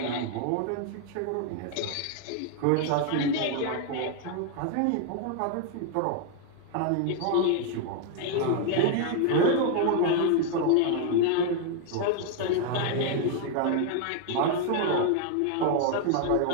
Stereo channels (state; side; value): different; both; correlation 0.00